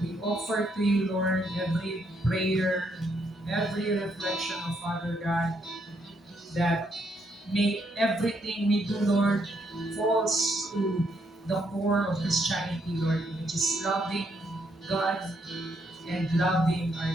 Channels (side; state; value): both; normal; correlation 0.74